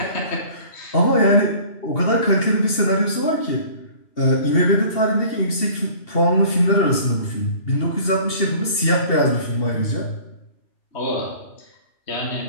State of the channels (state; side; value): late; right; 2.7 ms